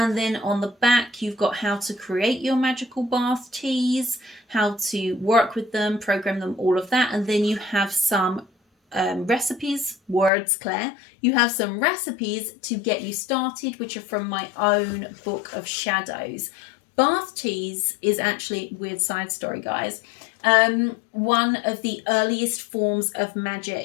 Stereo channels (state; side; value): drops out; right; at 10.3 s